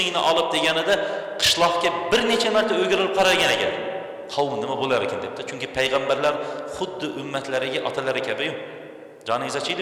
olib deganida qishloqga bir necha marta o'girilib qaragan ekan. Qavm nima bo'lar ekan debdi. Chunki payg'ambarlar xuddi ummatlariga otalari kabi-yu. Joningiz ochiydi,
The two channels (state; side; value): identical; both; correlation 1.00